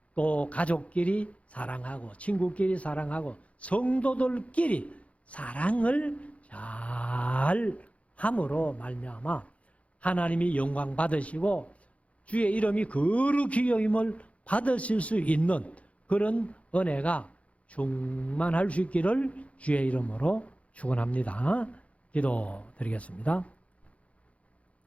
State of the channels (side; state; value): right; late; 0.064 ms